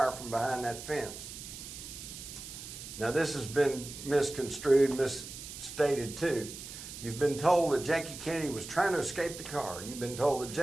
from behind that fence. Now this has been misconstrued, misstated too. You've been told that Jackie Kennedy was trying to escape the car. You've been told that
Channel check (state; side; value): noise; right; hiss, 11 dB below the sound